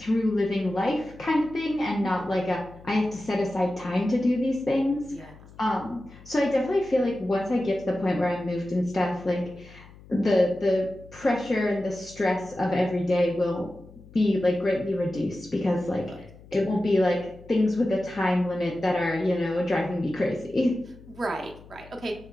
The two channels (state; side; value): noise; left; hum, 21 dB below the sound